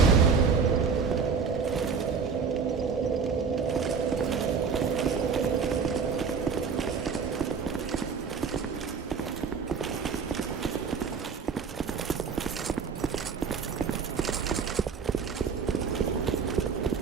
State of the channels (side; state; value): left; quieter; 5.7 dB